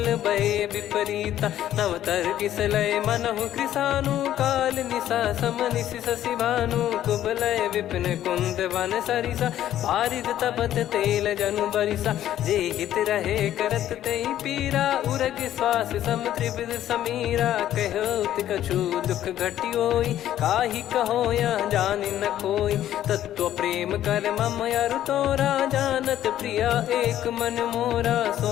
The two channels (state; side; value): quieter; right; 12.0 dB